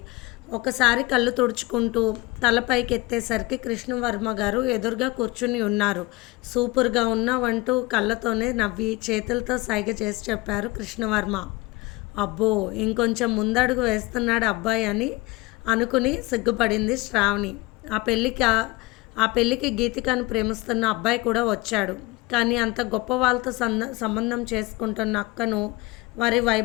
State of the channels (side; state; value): right; quieter; 21.4 dB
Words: ఒకసారి కళ్ళు తుడుచుకుంటూ తలపైకి ఎత్తేసరికి కృష్ణవర్మ గారు ఎదురుగా కూర్చుని ఉన్నారు. సూపర్గా ఉన్నావంటూ కళ్ళతోనే నవ్వి చేతులతో సైగ చేసి చెప్పారు కృష్ణవర్మ. అబ్బో, ఇంకొంచెం ముందడుగు వేస్తున్నాడు అబ్బాయి అని అనుకుని సిగ్గుపడింది శ్రావణి. ఆ పెళ్ళికి గీతికను ప్రేమిస్తున్న అబ్బాయి కూడా వచ్చాడు. కానీ అంత గొప్ప వాళ్ళతో సంబంధం చేసుకుంటున్న అక్కను, వారి